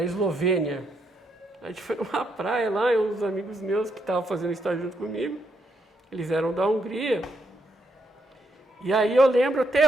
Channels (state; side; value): normal; both; correlation 0.78